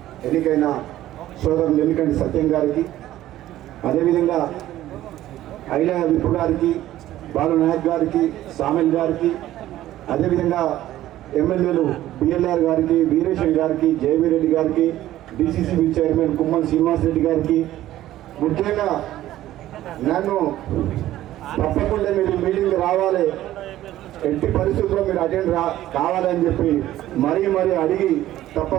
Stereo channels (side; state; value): left; quieter; 14.0 dB